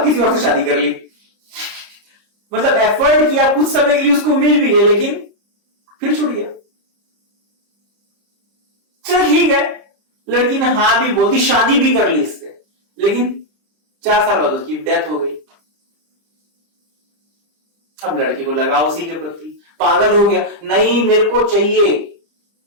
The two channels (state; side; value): late; left; 30 ms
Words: किसी और से शादी कर ली, मतलब एफर्ट किया, कुछ समय के लिए उसको मिल भी गया, लेकिन फिर छूट गया। चल ठीक है, लड़की ने हाँ भी बोल दी, शादी भी कर ली इससे, लेकिन 4 साल बाद उसकी डेथ हो गई। अब लड़के को लगा उसी के प्रति, पागल हो गया, नहीं मेरे को चाहिए,